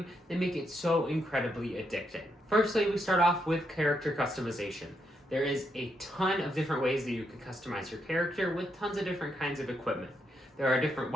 that make it so incredibly addicting. Firstly, we start off with character customization. There is a ton of different ways that you can customize your character with tons of different kinds of equipment. There are different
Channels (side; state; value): both; normal; correlation 0.79